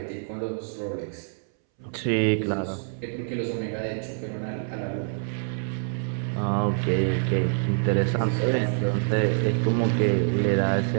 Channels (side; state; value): left; silent; 61 dB below the other